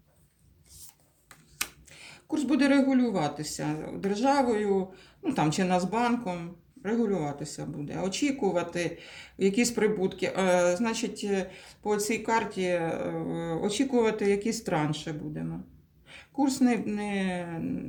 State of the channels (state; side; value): identical; both; correlation 1.00